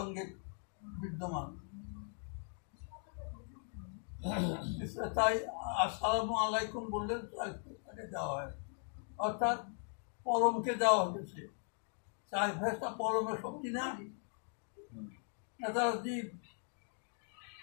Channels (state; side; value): silent; right; 52 dB below the other